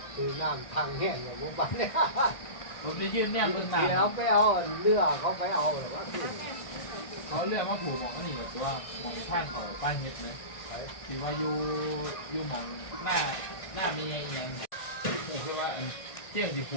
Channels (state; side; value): late; right; 1.6 ms